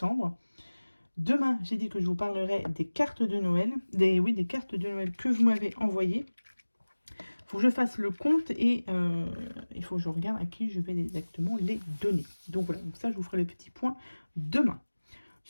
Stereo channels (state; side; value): inverted; both; correlation -1.00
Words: Demain, j'ai dit que je vous parlerai des cartes de Noël, des cartes de Noël que vous m'avez envoyées. Il faut que je fasse le compte et il faut que je regarde à qui je vais exactement les donner. Donc voilà, donc ça, je vous ferai le petit point demain.